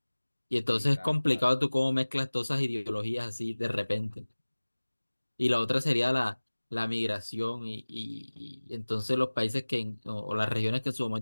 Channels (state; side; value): inverted; both; correlation -1.00